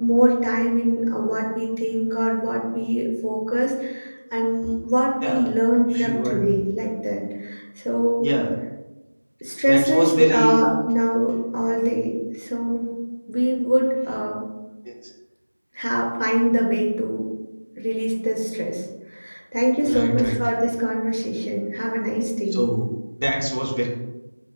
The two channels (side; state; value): both; inverted; correlation -1.00